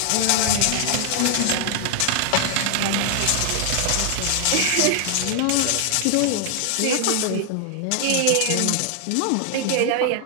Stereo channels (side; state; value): both; different; correlation 0.00